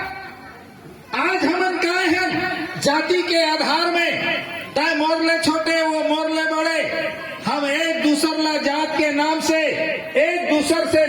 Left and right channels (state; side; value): identical; both; correlation 1.00